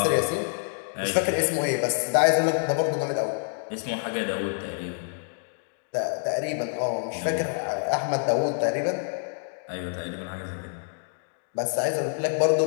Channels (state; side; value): silent; right; digital silence